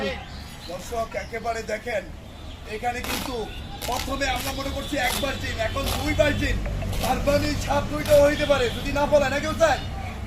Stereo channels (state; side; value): identical; both; correlation 1.00